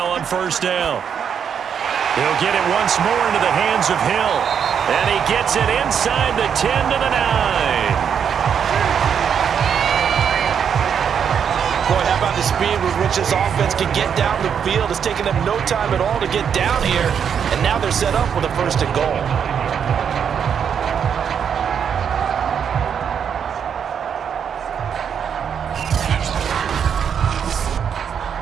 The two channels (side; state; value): left; quieter; 7.7 dB